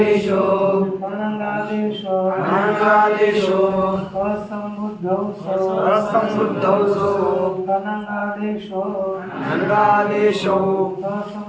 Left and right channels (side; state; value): both; identical; correlation 1.00